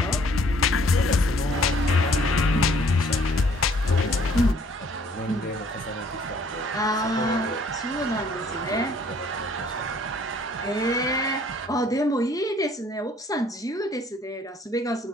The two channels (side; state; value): both; normal; correlation 0.60